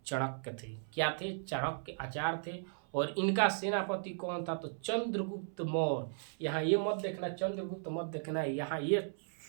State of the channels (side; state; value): left; silent; 54 dB below the other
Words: चाणक्य थे। क्या थे? चाणक्य आचार्य थे। और इनका सेनापति कौन था? तो चंद्रगुप्त मौर्य। यहाँ ये मत देखना, चंद्रगुप्त मत देखना, यहाँ ये